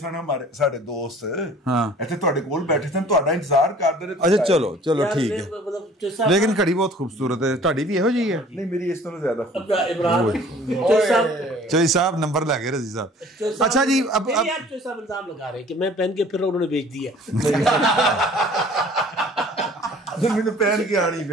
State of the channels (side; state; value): both; normal; correlation 0.51